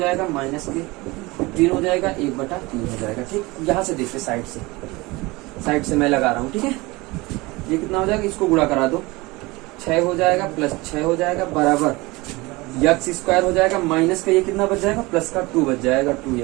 माइनस के 15 हो जाएगा, 1/3 हो जाएगा, ठीक। यहाँ से देखते साइड से मैं लगा रहा हूँ, ठीक है। ये कितना हो जाएगा, इसको गुणा करा दो, 6 हो जाएगा, प्लस 6 हो जाएगा, बराबर x² हो जाएगा, माइनस का ये कितना बच जाएगा, प्लस का 2 बच जाएगा,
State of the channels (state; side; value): quieter; left; 22.8 dB